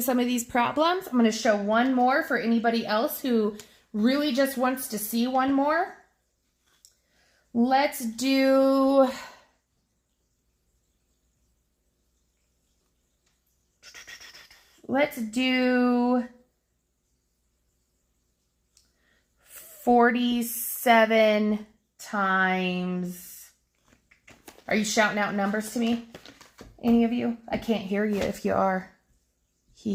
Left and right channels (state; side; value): identical; both; correlation 1.00